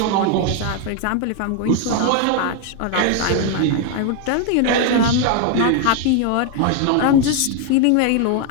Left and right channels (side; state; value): both; different; correlation 0.01